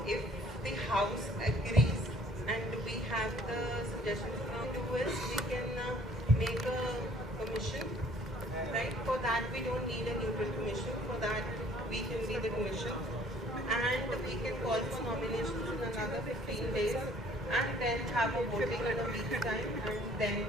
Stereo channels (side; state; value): both; normal; correlation 0.56